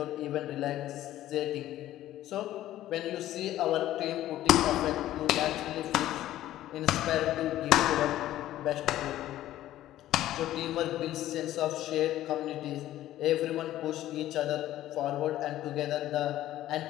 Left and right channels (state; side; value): quieter; right; 13.8 dB